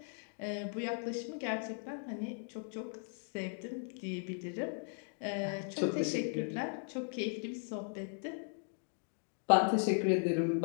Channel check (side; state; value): right; silent; 53 dB below the other